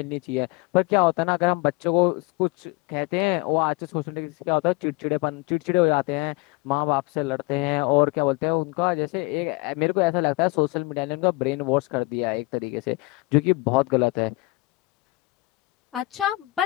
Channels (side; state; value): right; quieter; 22.6 dB